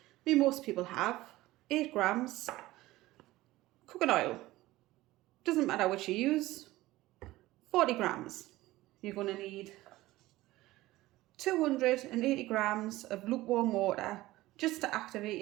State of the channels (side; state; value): left; quieter; 17.6 dB